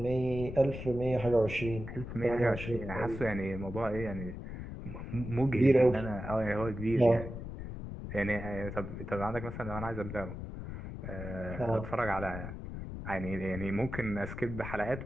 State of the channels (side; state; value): left; noise; rumble, 8 dB below the sound